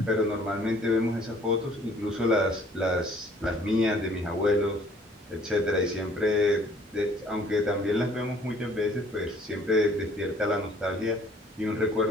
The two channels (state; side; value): normal; both; correlation 0.57